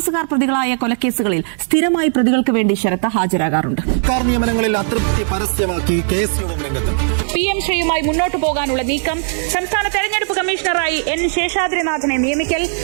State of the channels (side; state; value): left; silent; digital silence